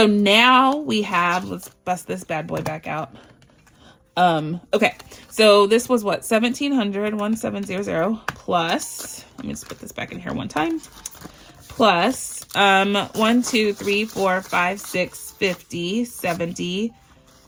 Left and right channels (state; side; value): identical; both; correlation 1.00